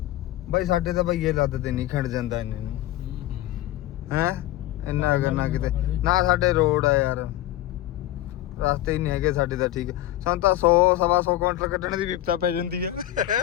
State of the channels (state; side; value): quieter; right; 14.3 dB